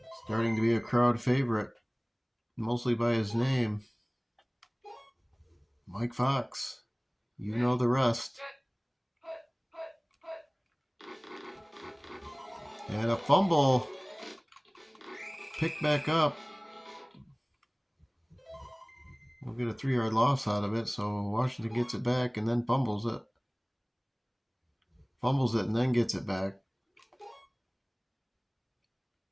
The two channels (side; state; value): both; identical; correlation 1.00